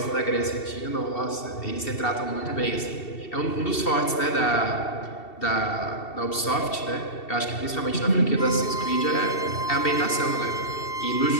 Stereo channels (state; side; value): late; right; 2.7 ms